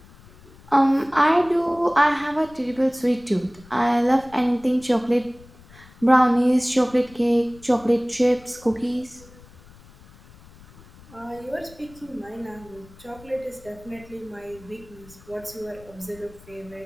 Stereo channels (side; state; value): left; noise; rumble, 23 dB below the sound